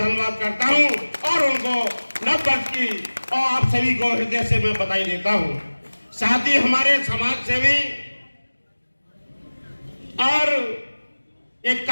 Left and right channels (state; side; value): inverted; both; correlation -1.00